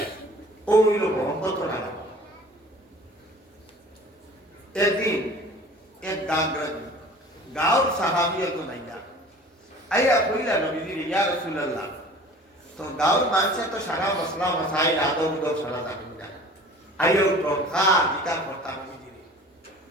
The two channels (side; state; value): both; normal; correlation 0.45